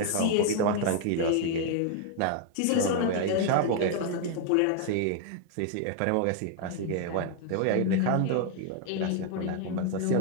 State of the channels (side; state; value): both; different; correlation 0.00